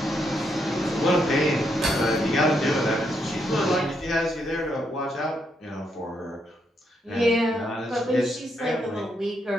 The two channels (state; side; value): normal; both; correlation 0.78